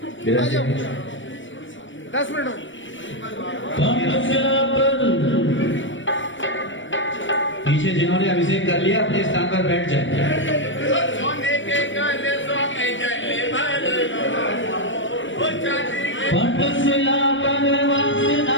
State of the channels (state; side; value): late; right; 0.56 ms